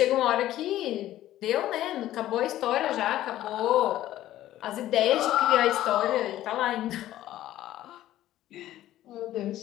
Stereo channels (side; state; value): right; quieter; 13.8 dB